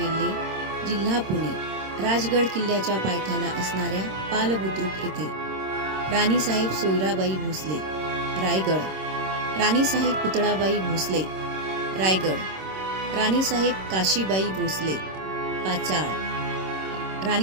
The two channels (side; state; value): left; late; 26 ms